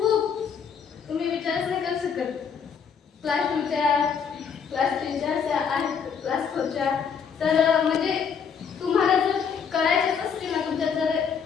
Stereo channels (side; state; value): right; quieter; 6.8 dB